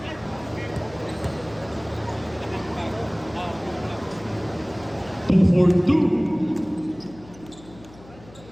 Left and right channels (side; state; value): left; noise; hum, 21 dB below the sound